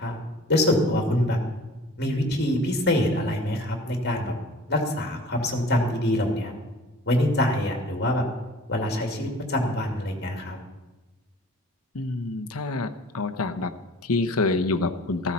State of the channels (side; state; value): both; normal; correlation 0.47